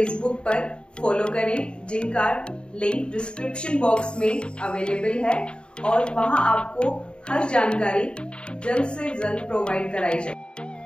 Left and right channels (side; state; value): right; late; 0.053 ms